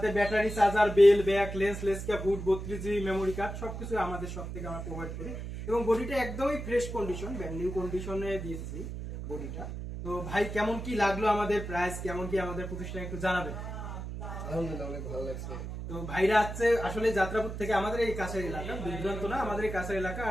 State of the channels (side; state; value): right; noise; hum, 7 dB below the sound